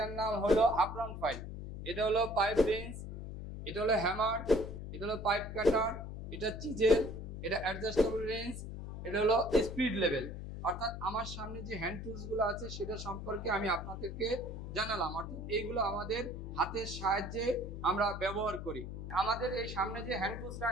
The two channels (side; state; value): left; noise; hum, 8 dB below the sound